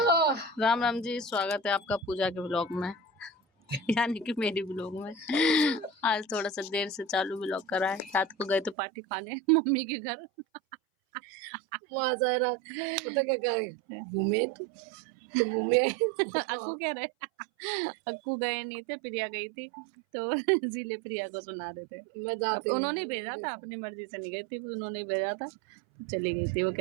राम राम जी, स्वागत है आपका पूजा के ब्लॉग में यानी कि मेरी ब्लॉग में। आज थोड़ा सा देर से चालू ब्लॉग करा है। रात को गए तो पार्टी खाने मम्मी के घर। पता क्या करे घूमे तो घूमे अक्कू कह रहे अक्कू गए नहीं थे, प्रिया गई थी तो इसीलिए प्रिया को सुना रहे थे। अब उन्होंने भेजा था, अपनी मर्जी से नहीं गई थी, उन्होंने भेजा था तो चली गई थी। वो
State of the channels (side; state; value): left; drops out; at 8.8 s